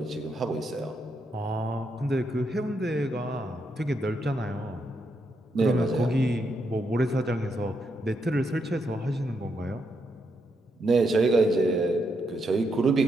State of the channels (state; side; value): normal; both; correlation 0.80